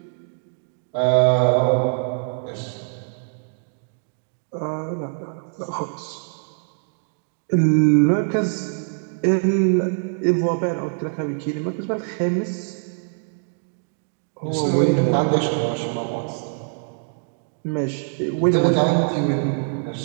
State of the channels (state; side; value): silent; left; 63 dB below the other